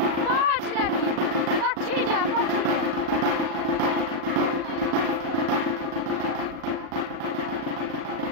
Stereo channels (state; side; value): late; left; 37 ms